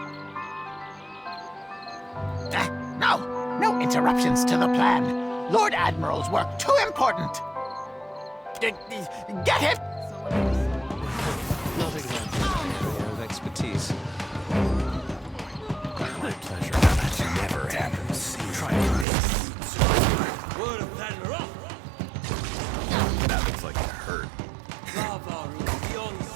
No interruptions to the plan. Lord Admiral's work too important. Get him! Not exactly an area of expertise. My pleasure. That never happens. Try this. That looks like it hurt.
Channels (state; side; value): drops out; left; at 19.1 s